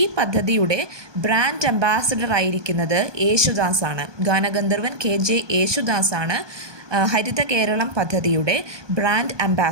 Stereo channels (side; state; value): left; late; 1.2 ms